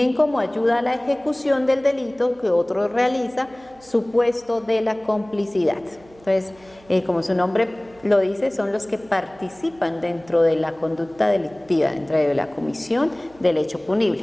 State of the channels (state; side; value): noise; right; hum, 27 dB below the sound